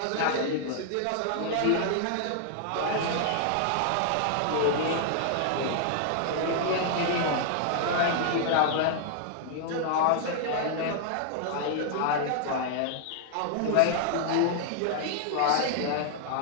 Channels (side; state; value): both; different; correlation -0.01